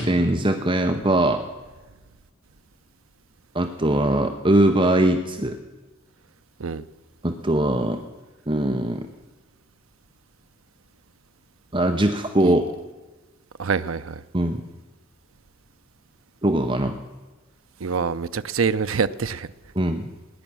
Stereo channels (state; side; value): normal; both; correlation 0.60